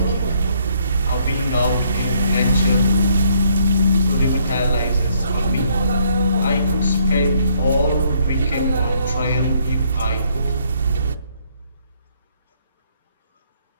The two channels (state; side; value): inverted; both; correlation -0.68